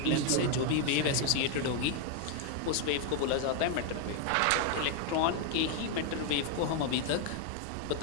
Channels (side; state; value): both; different; correlation 0.00